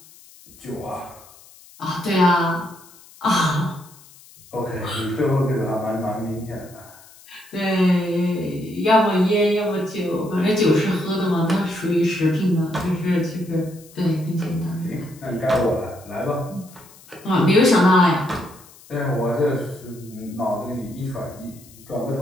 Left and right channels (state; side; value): noise; left; hiss, 23 dB below the sound